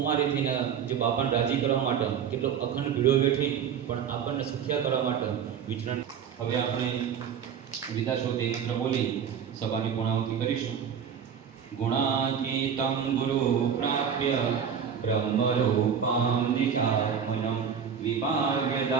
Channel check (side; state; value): left; quieter; 7.6 dB